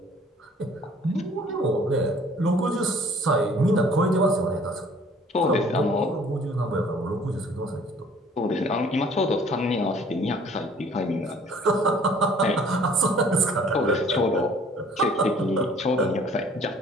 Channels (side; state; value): both; normal; correlation 0.54